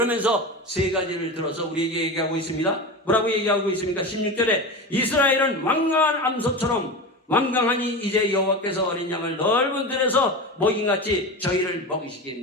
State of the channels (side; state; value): both; normal; correlation 0.25